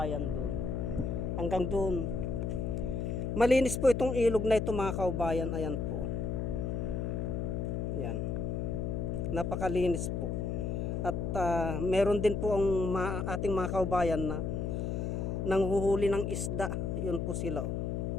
doon. Hanggang doon. Malinis po itong ilog na ito mga kaubayan. Ayan po. Ayan. Napakalinis po. At meron din po ang ating mga kaubayan na nanghuhuli ng isda. Yun po sila.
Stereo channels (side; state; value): left; noise; hum, 1 dB below the sound